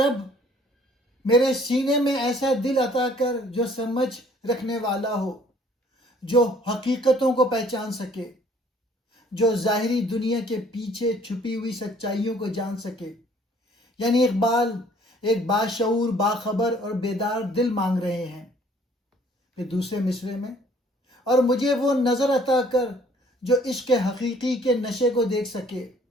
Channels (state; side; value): normal; both; correlation 0.58